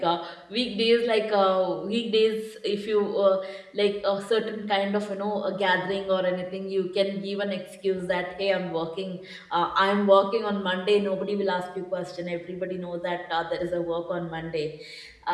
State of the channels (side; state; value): both; identical; correlation 1.00